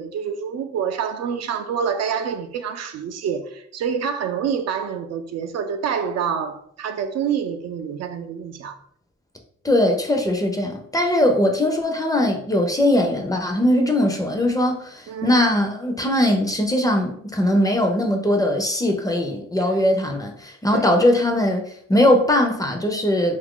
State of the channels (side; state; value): both; normal; correlation 0.57